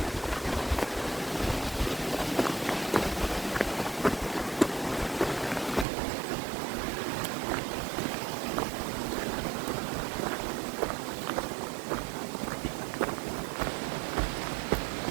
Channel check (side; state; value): left; drops out; at 5.9 s